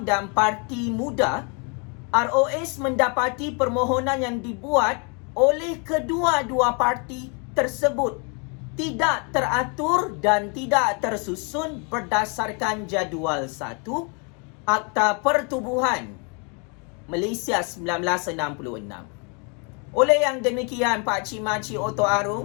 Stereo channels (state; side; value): quieter; right; 35.3 dB